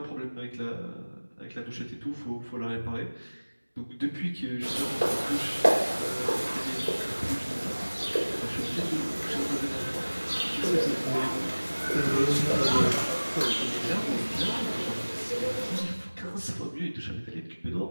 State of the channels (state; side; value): inverted; both; correlation -1.00